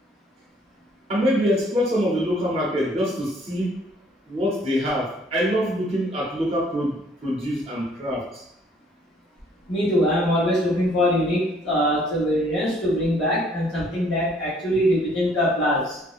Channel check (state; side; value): normal; both; correlation 0.61